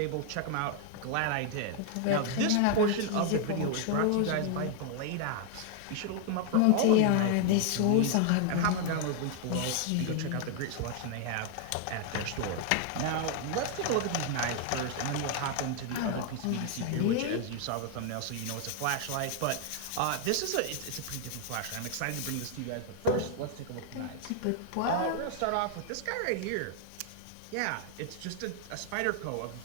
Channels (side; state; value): both; different; correlation 0.00